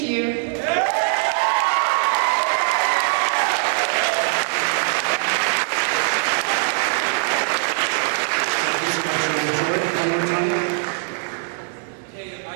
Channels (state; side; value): silent; left; 57 dB below the other